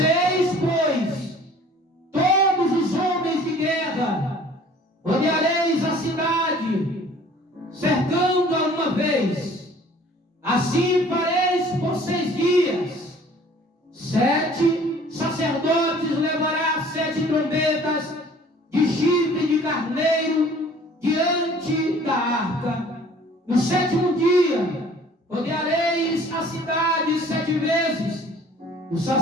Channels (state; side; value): normal; both; correlation 0.52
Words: pois, todos os homens de guerra, rodeareis a cidade, cercando-a uma vez. Assim fareis por 6 dias. 7 sacerdotes levará 7 trombetas de chifre de carneiro diante da arca. No 7º dia, rodeareis a cidade 7 vezes. Os